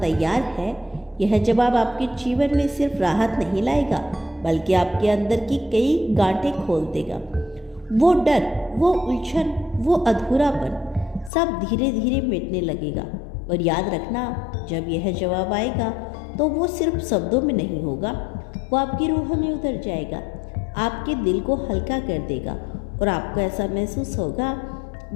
है, यह जवाब आपके जीवन में सिर्फ राहत नहीं लाएगा, बल्कि आपके अंदर की कई गांठें खोल देगा। वो डर, वो उलझन, वो अधूरापन सब धीरे धीरे मिटने लगेगा। और याद रखना, जब यह जवाब आएगा तो वो सिर्फ शब्दों में नहीं होगा, वो आपकी रूह में उतर जाएगा, आपके दिल को हल्का कर देगा, और आपको ऐसा महसूस होगा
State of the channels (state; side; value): drops out; right; at 11.3 s